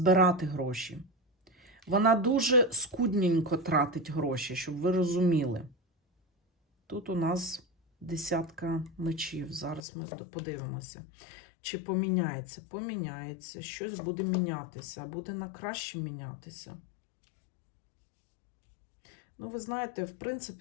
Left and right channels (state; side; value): drops out; right; at 9.8 s